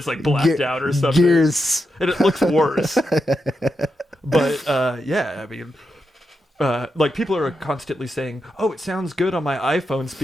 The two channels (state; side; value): normal; both; correlation 0.86